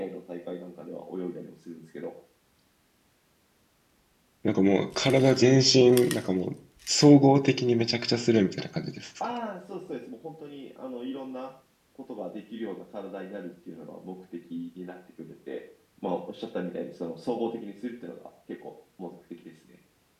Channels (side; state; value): both; identical; correlation 1.00